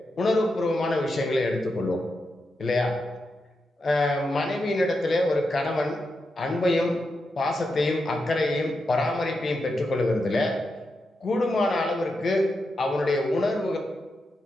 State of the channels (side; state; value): both; normal; correlation 0.87